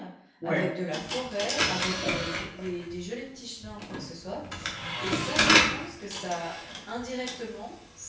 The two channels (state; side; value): identical; both; correlation 1.00